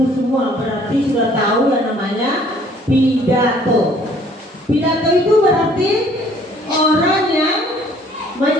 semua berarti sudah tahu yang namanya pidato. Pidato itu berarti orang yang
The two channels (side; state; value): both; normal; correlation 0.58